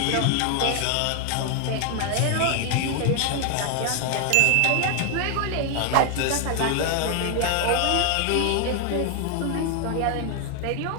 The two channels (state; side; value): different; both; correlation 0.00